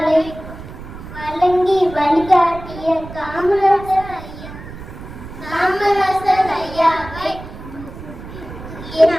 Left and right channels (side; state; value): right; noise; rumble, 13 dB below the sound